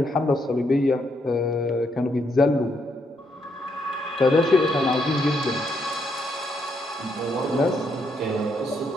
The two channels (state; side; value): normal; both; correlation 0.76